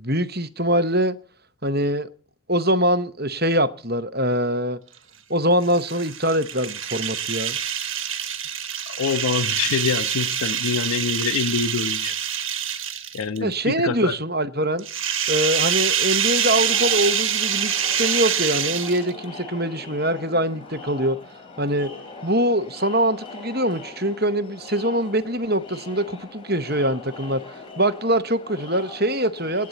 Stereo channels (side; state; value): both; normal; correlation 0.00